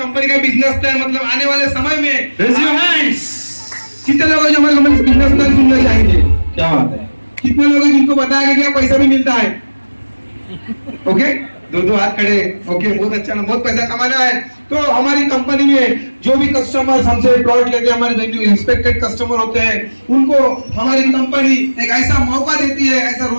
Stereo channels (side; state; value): both; inverted; correlation -1.00